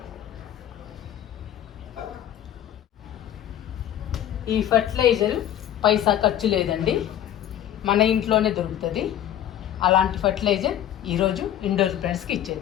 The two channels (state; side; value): quieter; right; 11.2 dB